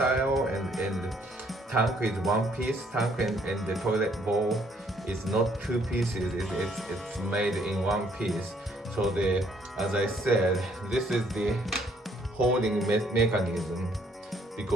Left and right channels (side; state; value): both; normal; correlation 0.65